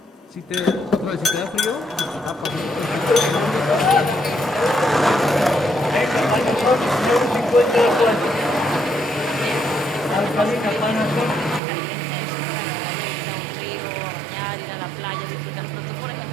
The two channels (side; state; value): left; drops out; at 11.6 s